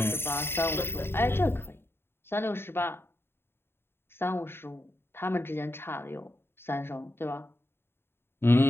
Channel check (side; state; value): right; late; 0.11 ms